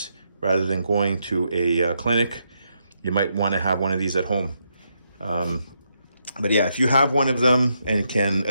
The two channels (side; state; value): both; inverted; correlation -0.80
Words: rather than going to a clinic. You might want to have one of these at home. But yeah, if you have one of them and can